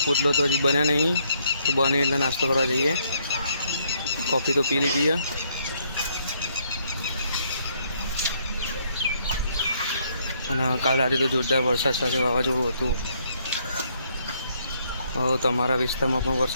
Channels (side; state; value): both; inverted; correlation -0.70